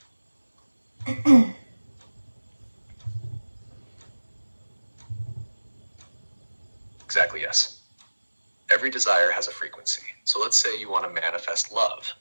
Exactly, yes. Every desire has a frequency. So let's say you want to manifest love.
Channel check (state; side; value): inverted; both; correlation -1.00